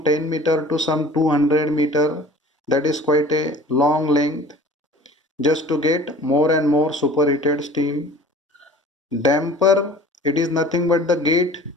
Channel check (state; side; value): normal; both; correlation 0.45